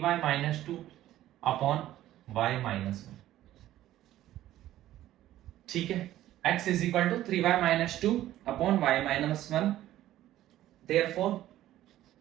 minus 2 upon y minus 1। ठीक है, x is equal to 3y minus 2 upon y minus 1। Therefore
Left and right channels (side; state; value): left; quieter; 13.8 dB